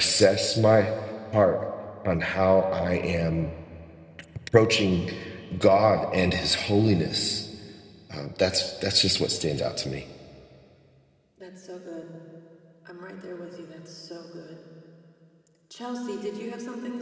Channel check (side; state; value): both; identical; correlation 1.00